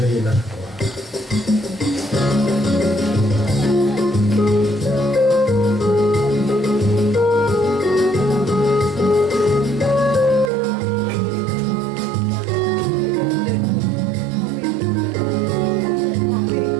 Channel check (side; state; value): left; drops out; at 10.5 s